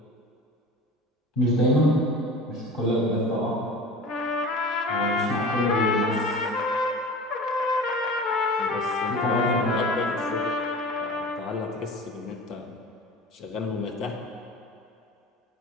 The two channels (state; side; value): normal; both; correlation 0.36